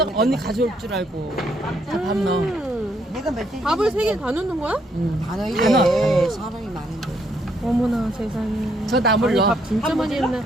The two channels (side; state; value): both; normal; correlation 0.72